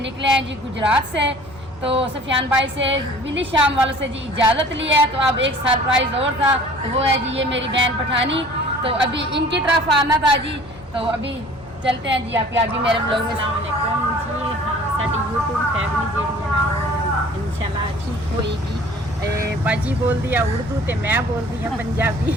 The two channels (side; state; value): both; normal; correlation 0.49